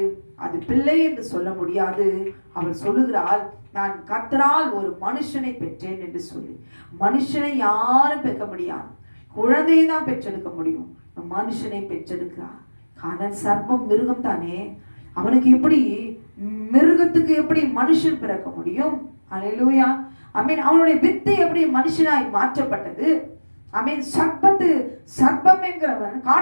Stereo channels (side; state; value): both; inverted; correlation -1.00